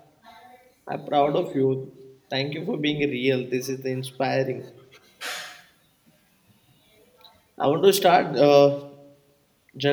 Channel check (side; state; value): both; identical; correlation 1.00